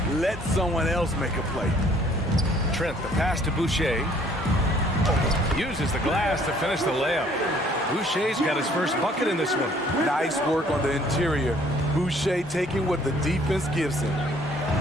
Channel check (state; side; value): normal; both; correlation 0.59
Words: Let someone else make a play. Trent, the pass to Boucher. Uses the glass to finish the layup. Boucher's got his first bucket in this one. Nice work on the interior. Boucher taking what the defense gives him.